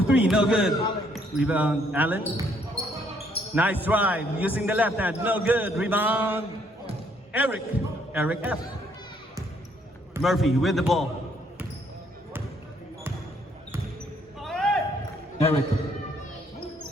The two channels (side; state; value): both; normal; correlation 0.68